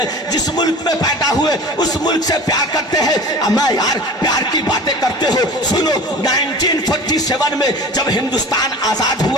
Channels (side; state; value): both; normal; correlation 0.38